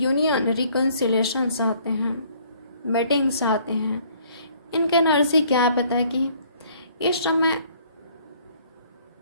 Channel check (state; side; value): inverted; both; correlation -0.60